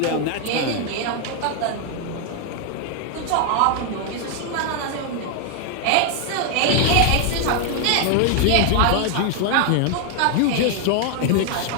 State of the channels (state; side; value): different; both; correlation 0.00